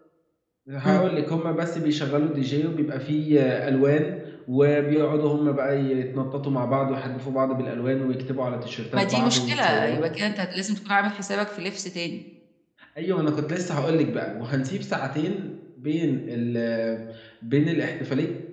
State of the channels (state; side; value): identical; both; correlation 1.00